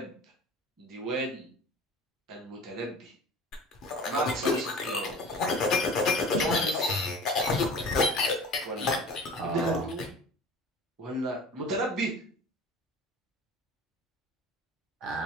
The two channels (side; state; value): both; normal; correlation 0.40